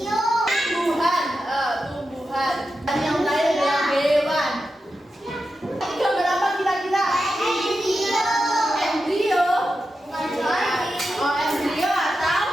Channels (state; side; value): normal; both; correlation 0.90